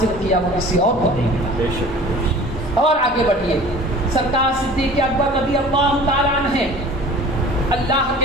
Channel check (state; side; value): normal; both; correlation 0.44